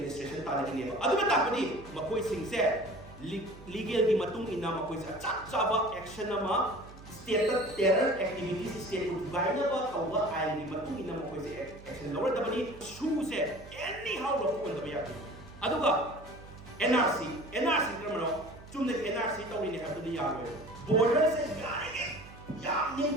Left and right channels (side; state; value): right; noise; hum, 19 dB below the sound